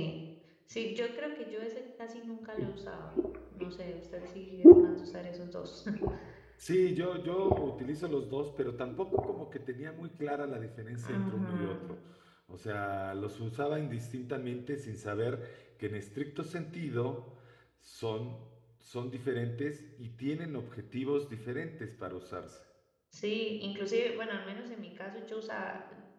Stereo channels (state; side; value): identical; both; correlation 1.00